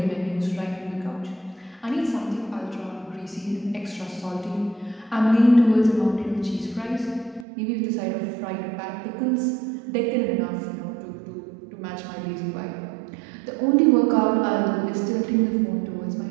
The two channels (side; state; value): left; drops out; at 7.5 s